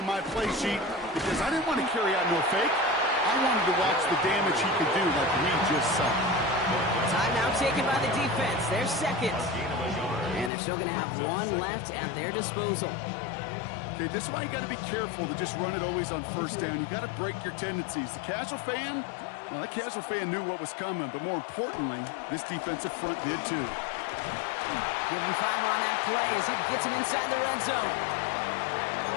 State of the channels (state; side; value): drops out; right; at 10.5 s